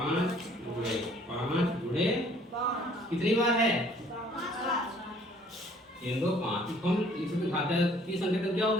जुड़े 5 जुड़े कितनी बार है 3 2 5 हम इसमें घात की संख्या क्या हो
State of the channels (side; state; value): both; normal; correlation 0.58